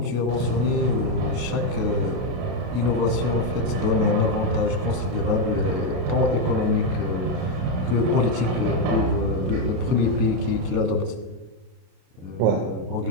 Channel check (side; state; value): left; late; 32 ms